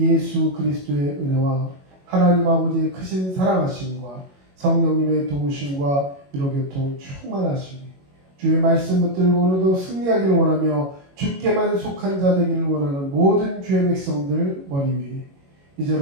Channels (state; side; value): late; left; 21 ms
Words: 예수 그리스도의 은혜와 하나님 아버지의 크신 사랑하심과 성령님의 도우심과 위로교통 충만하심이 주의 말씀 붙들고 오늘도 승리하기를 원하며 주께만 속한 자 되기를 원하는 모든 주의 백성들 머리 위에